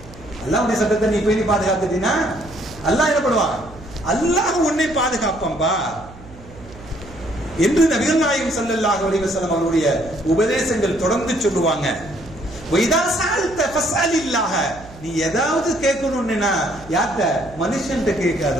அல்லாஹ்வுடைய சட்டத்தை நீ பேணி பாதுகாத்துட்டீனா அல்லாஹ் என்ன பண்ணுவான்? அல்லாஹ் உன்னை பாதுகாப்பான்பா என்று நபிகள் நாயகம் ஸல்லல்லாஹு அலைஹி வஸல்லம் அவருடைய உபதேசங்கள் தொடர்ந்து சொல்லுவாங்க. வைதா சஅல்த ஃபஸ்அலில்லாஹ, நீ ஏதாவது கேட்கணும்னா யார்ட்ட? மனுஷன்ட்ட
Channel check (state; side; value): noise; right; hum, 19 dB below the sound